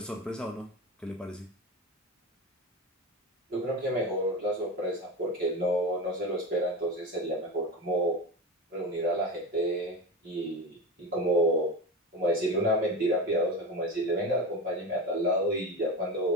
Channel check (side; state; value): both; normal; correlation 0.24